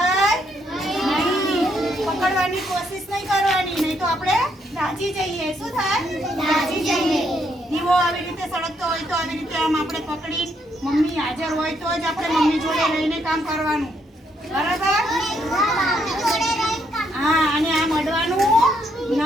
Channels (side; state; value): both; normal; correlation 0.74